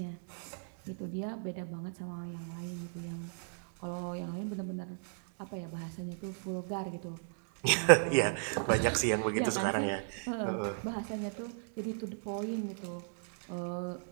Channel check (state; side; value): silent; left; digital silence